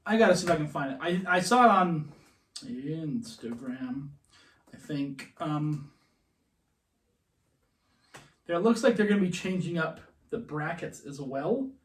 I gotta see if I can find it. I saw it on Instagram. I think. It looks like they're going to be changing up the brackets as well,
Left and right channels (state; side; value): identical; both; correlation 1.00